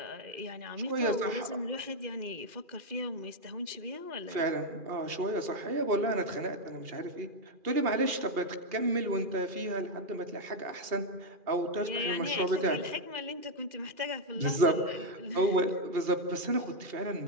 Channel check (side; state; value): left; late; 2.4 ms